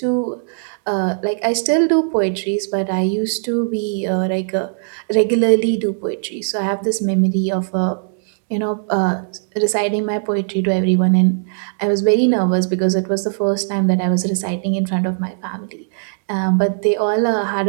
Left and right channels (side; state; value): left; silent; digital silence